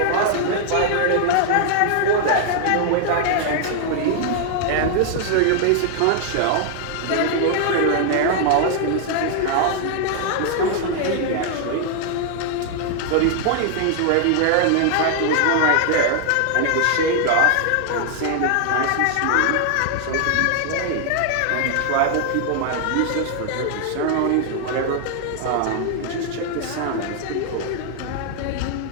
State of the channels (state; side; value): different; both; correlation 0.00